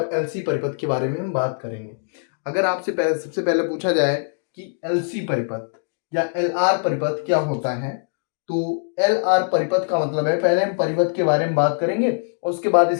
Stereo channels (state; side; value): silent; right; digital silence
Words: एल सी परिपथ के बारे में हम बात करेंगे। अगर आपसे सबसे पहले पूछा जाए कि एल सी परिपथ या एल आर परिपथ क्या होता है, तो एल आर परिपथ का मतलब है, पहले हम परिपथ के बारे में बात करेंगे और उसके बाद